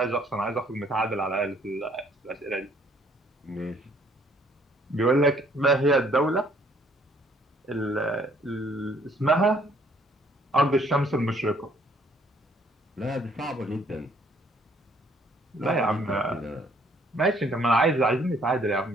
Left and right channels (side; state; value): both; normal; correlation 0.63